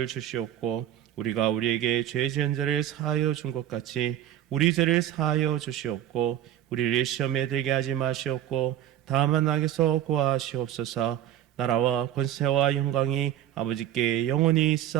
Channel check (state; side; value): quieter; left; 11.8 dB